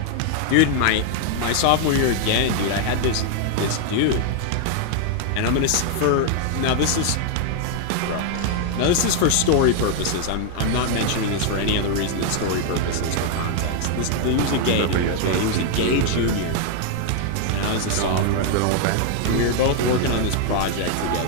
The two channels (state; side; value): different; both; correlation 0.00